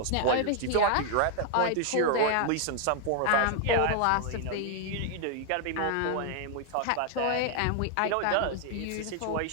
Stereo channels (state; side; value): different; both; correlation 0.00